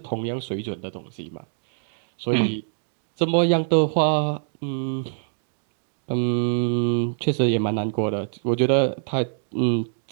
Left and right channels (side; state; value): left; silent; digital silence